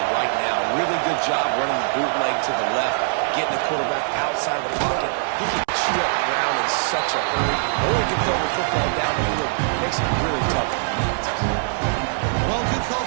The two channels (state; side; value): silent; left; 64 dB below the other